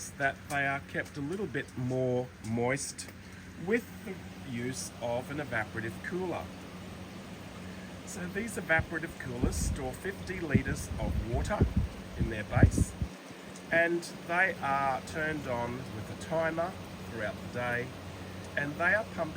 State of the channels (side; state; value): both; identical; correlation 1.00